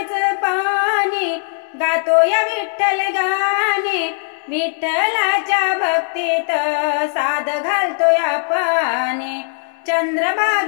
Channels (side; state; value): right; silent; digital silence